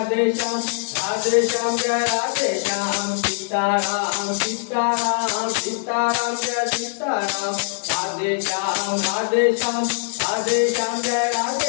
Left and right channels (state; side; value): silent; right; digital silence